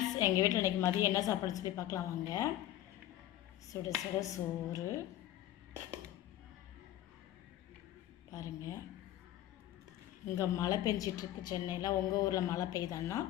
எங்கள் வீட்டில் இன்றைக்கி மதியம் என்ன சாப்பாடு சொல்லி பார்க்கலாம் வாங்க. சுட சுட சோறு பாருங்கள். இங்கே மழை பெஞ்சிட்ருக்கு சென்னையில். உங்கள் ஊரில் மழை பெய்தான்னா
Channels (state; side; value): quieter; right; 13.4 dB